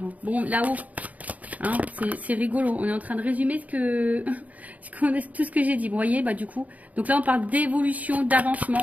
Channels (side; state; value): left; late; 0.073 ms